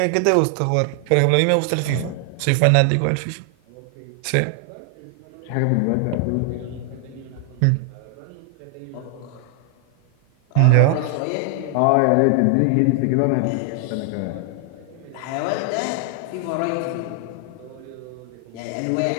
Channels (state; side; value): different; both; correlation 0.00